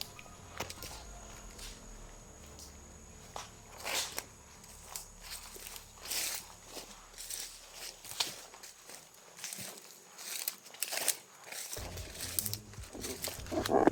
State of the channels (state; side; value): identical; both; correlation 1.00